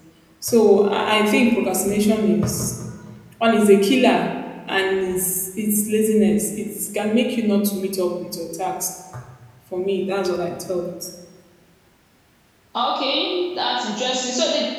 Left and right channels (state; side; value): identical; both; correlation 1.00